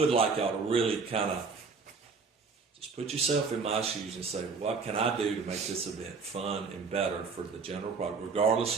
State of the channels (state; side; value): quieter; left; 4.8 dB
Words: like y'all to really kind of just put yourself in my shoes and say, what can I do to make this event fun and better for the general public, regardless